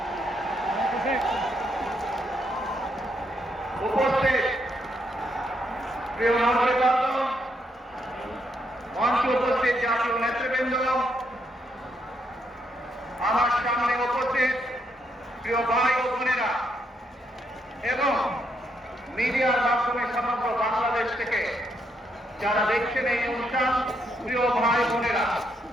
উপস্থিত প্রিয় নাগরিকবৃন্দ, মঞ্চে উপস্থিত জাতীয় নেতৃবৃন্দ, আমার সামনে উপস্থিত প্রিয় ভাই ও বোনেরা এবং মিডিয়ার মাধ্যমে সমগ্র বাংলাদেশ থেকে যারা দেখছেন এই অনুষ্ঠান, প্রিয় ভাই বোনেরা,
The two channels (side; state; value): both; normal; correlation 0.76